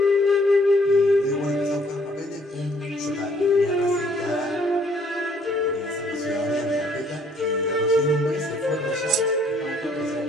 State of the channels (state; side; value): normal; both; correlation 0.63